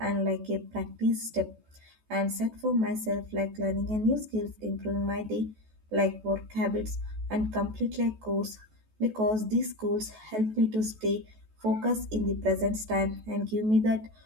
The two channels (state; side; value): late; left; 14 ms